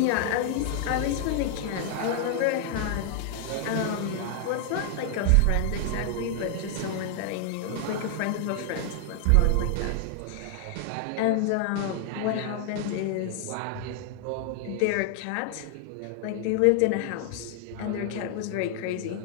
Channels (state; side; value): different; both; correlation 0.00